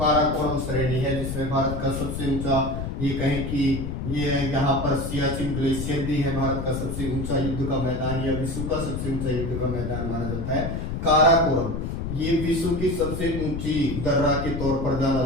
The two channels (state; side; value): noise; left; rumble, 4 dB below the sound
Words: श्रेणी है जिसमें भारत का सबसे ऊंचा, ये कहें कि ये यहाँ पर सियाचिन ग्लेशियर भी है, भारत का सबसे ऊंचा युद्ध का मैदान या विश्व का सबसे ऊंचा युद्ध का मैदान माना जाता है काराकोरम। ये विश्व की सबसे ऊंची दर्रा के तौर पर जाना